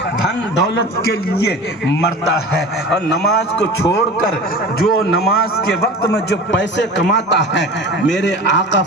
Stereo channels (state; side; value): normal; both; correlation 0.35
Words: دھن دولت کے لیے مرتا ہے, اور نماز کو چھوڑ کر جو نماز کے وقت میں جو پیسے کماتا ہے, میرے آقا